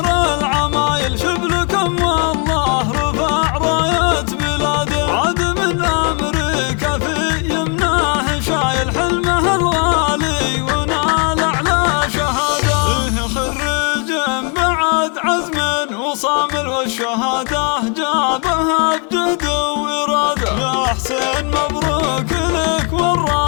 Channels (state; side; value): quieter; right; 37.6 dB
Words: العمايل، شبلكم والله رفع راية بلاده. عاد من أمريكا في يمناه شايل حلمه الغالي ونال أعلى شهادة. خريج بعد عزم وصامل، والشهادة جابها بجهد وإرادة. يا حسين مبروك لك